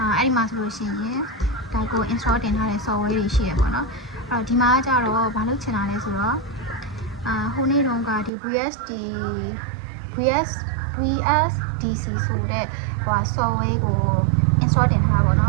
အဲ့ဒီမှာဆိုလို့ရှိရင်ဒါကို install တင်ထားတဲ့ software တွေရှိရပေါ့နော်အဲ့တော့ဒီမှာကျတော့ဘာလို့ချင်တာလဲဆိုတော့ဟိုနေ့တုန်းကဒီ VSDC ဆိုတဲ့ဟို software ကို install တင်ထားတာပေါ့နော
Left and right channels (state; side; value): drops out; left; at 8.3 s